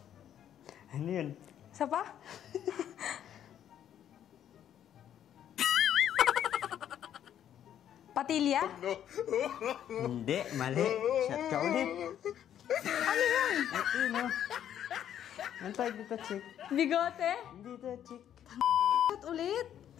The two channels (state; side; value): quieter; right; 10.2 dB